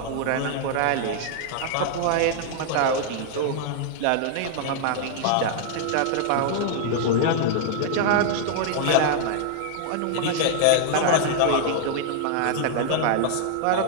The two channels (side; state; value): both; different; correlation 0.00